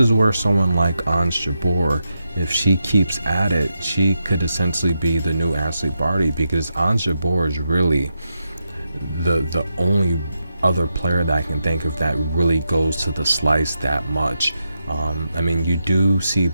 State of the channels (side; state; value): both; inverted; correlation -0.86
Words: where someone like Ons Jabeur, if she keeps at it, she could essentially be the new Ashleigh Barty, because Ons Jabeur is really the only other player that I can think of that really goes to the slice that much. I mean, you do see